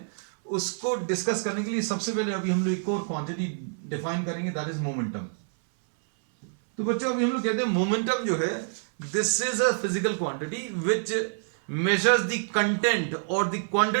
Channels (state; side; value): silent; left; 60 dB below the other